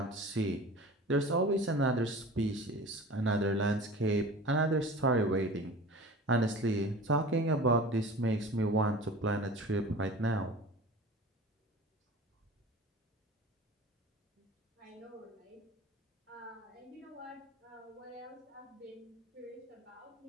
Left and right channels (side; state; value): both; normal; correlation 0.38